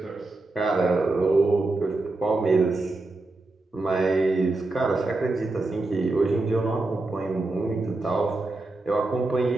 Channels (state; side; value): quieter; left; 3.1 dB